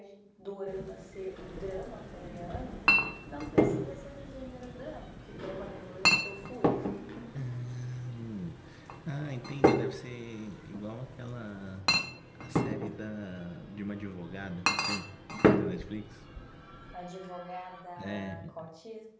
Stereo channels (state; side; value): identical; both; correlation 1.00